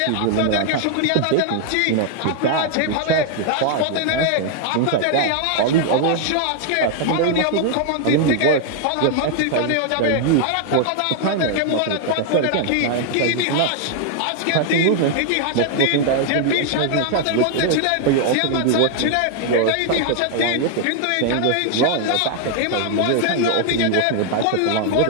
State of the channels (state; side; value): different; both; correlation 0.00